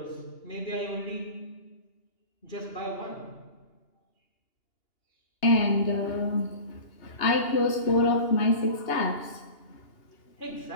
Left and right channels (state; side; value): late; right; 2.8 ms